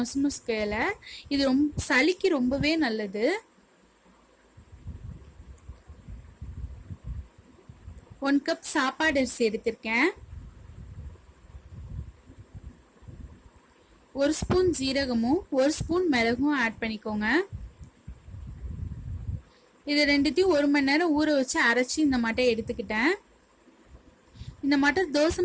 இலை. இது சளிக்கு ரொம்பவே நல்லது. 1 கப் சாப்பாடு அரிசி எடுத்திருக்கேன். 1 ஸ்பூன் ஜீரகமும் 1 ஸ்பூன் மிளகும் ஆட் பண்ணிக்கோங்க. இது ரெண்டுத்தையும் 1 மணி நேரம் ஊற வச்சு அரைச்சி இந்த மாட்டை எடுத்துக்கிட்டேன். இந்த மாட்டை தோசை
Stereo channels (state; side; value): identical; both; correlation 1.00